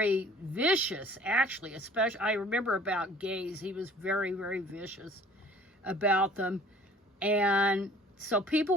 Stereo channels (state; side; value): normal; both; correlation 0.51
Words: vicious, actually, especially, I remember about gays, he was very, very vicious about them. And so people